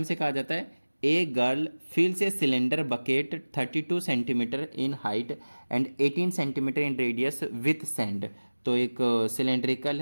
कहा जाता है a girl fills a cylinder bucket 32 centimetre in height and 18 centimetre in radius with sand. तो एक सिलेंड्रिकल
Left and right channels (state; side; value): inverted; both; correlation -1.00